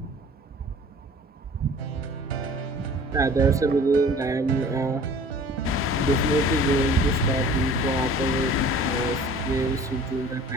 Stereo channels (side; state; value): both; normal; correlation 0.46